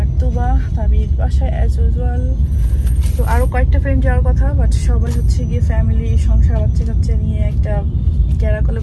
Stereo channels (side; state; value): both; identical; correlation 1.00